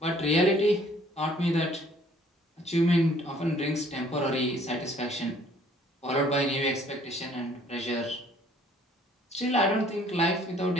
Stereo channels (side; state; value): both; normal; correlation 0.59